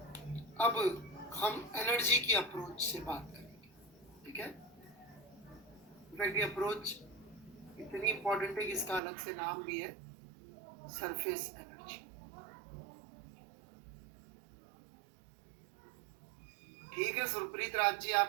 अब हम एनर्जी की अप्रोच से बात करेंगे, ठीक है? इनफैक्ट ये अप्रोच इतनी इंपॉर्टेंट है कि इसका अलग से नाम भी है, सरफेस एनर्जी। ठीक है सुरप्रीत राज जी,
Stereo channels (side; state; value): left; drops out; at 9.0 s